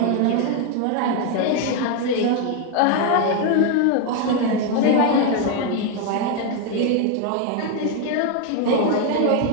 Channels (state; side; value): different; both; correlation 0.01